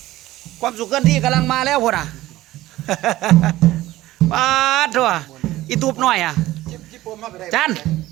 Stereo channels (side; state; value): left; quieter; 16.2 dB